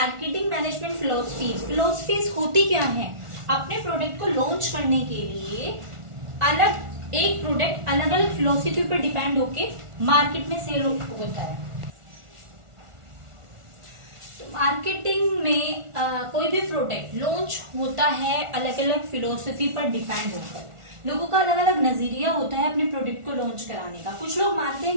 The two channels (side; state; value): left; late; 1.4 ms